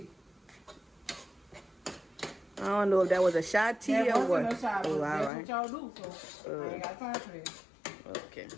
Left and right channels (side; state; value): right; drops out; at 5.3 s